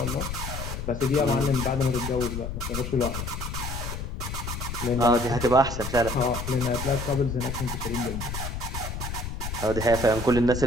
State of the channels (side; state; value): left; noise; rumble, 5 dB below the sound